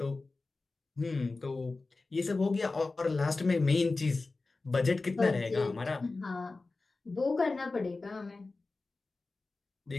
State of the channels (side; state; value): right; quieter; 3.6 dB